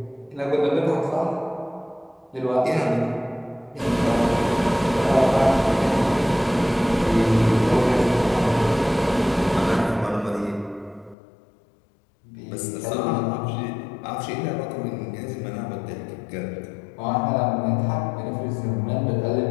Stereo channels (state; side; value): drops out; right; at 11.2 s